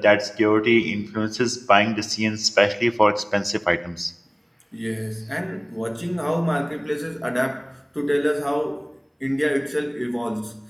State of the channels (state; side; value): identical; both; correlation 1.00